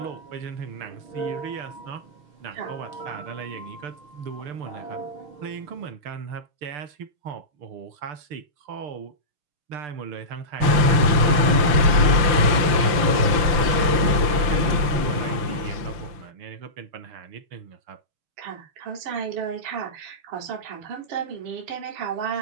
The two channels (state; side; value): late; left; 5.9 ms